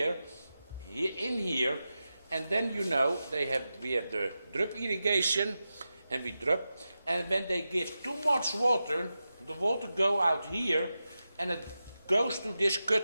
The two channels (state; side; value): inverted; both; correlation -0.92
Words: in here, and then we have the drip irrigation, and we drip, and when they give too much water, the water go out here, and it goes to this